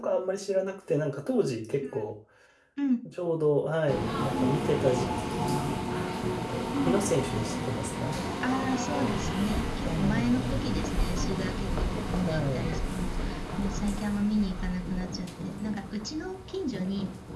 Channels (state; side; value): identical; both; correlation 1.00